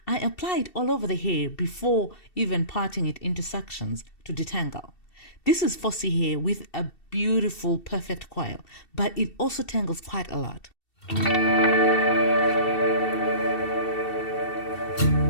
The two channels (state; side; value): late; right; 2.7 ms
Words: I apply it all over the hair before even parting it into sections to detangle. This is fussy hair with a beautiful, perfect coil, but it also tangles quite a lot.